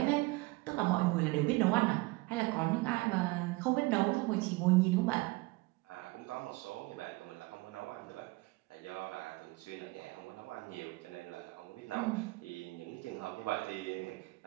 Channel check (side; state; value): left; quieter; 23.1 dB